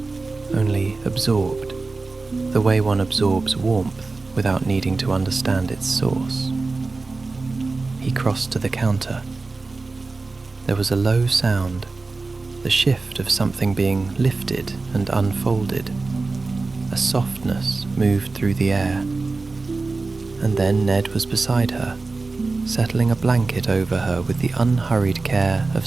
only absorbed, the way one absorbs warmth without needing to understand its source. He crossed to the counter. There was a low sound, the shift of something being lifted and unfolded. A softness moved through the air. And then Ned was beside her, settling a blanket over her with the unhurried care of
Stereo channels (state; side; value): quieter; left; 3.7 dB